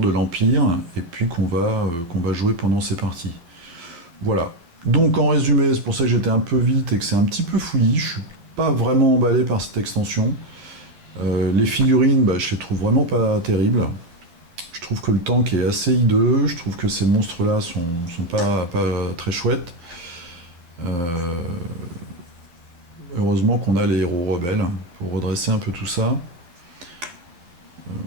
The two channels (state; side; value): late; left; 12 ms